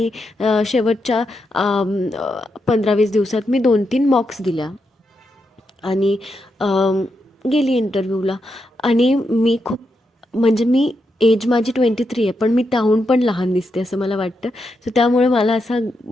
शेवटच्या 15-20 दिवसात मी 2-3 मॉक्स दिल्या आणि गेली इंटरव्ह्यूला. आणि मी खूप, म्हणजे मी एज माझी 23 आहे, पण मी त्याहून पण लहान दिसते असं मला वाटतं. सो त्यामुळे मला असा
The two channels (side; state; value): both; normal; correlation 0.84